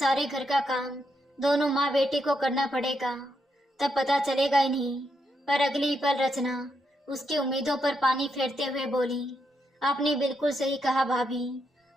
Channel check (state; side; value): normal; both; correlation 0.81